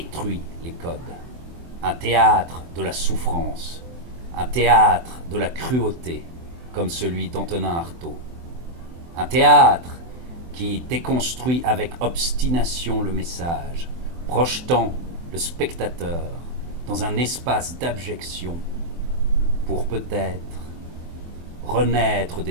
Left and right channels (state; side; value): late; left; 24 ms